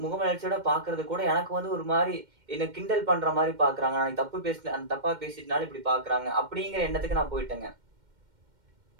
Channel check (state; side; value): late; left; 2.1 ms